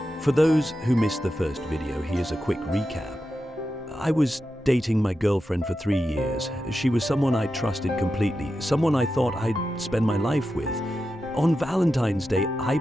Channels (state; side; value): normal; both; correlation 0.90